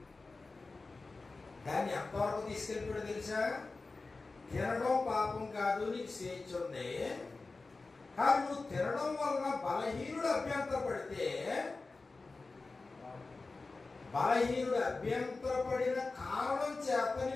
దాన్ని ఎంతవరకు తీసుకెళ్ళిపోయాడు తెలుసా? తినడం పాపం కాదు, నీకు స్వేచ్ఛ ఉంది. కానీ నువ్వు తినడం వలన బలహీనుడు అభ్యంతరపడితే, బలహీనుడు అభ్యంతరపడిన కారణం చేత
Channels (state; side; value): quieter; right; 3.7 dB